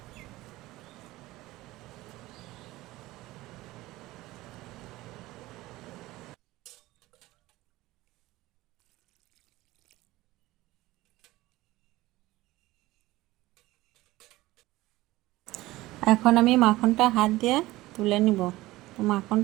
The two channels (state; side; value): quieter; left; 18.2 dB